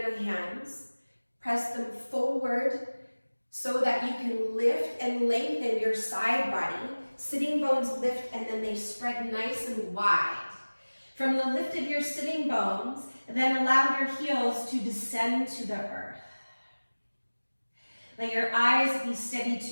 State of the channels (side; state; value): both; inverted; correlation -1.00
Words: hands, press them forward so that you can lift and lengthen your side body. Sitting bones lift and then they spread nice and wide. From the lift of your sitting bones, then allow your heels to descend to the earth. Let your eyes be steady